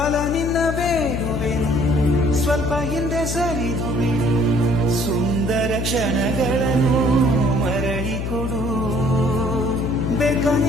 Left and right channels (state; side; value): noise; left; hum, 3 dB below the sound